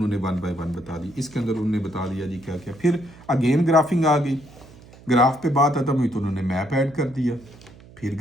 1 by 1 बता दी। इसके अंदर उन्होंने बता दिया जी क्या क्या। फिर अगेन ग्राफिंग आ गई, ग्राफ पे बात खत्म हुई तो उन्होंने मैप ऐड कर दिया, फिर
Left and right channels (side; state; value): right; noise; hum, 22 dB below the sound